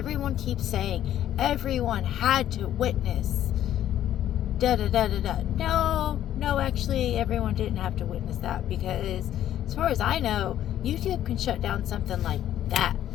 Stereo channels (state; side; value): quieter; right; 11.7 dB